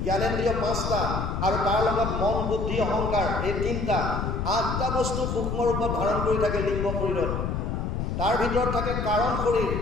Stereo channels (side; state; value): left; noise; rumble, 2 dB below the sound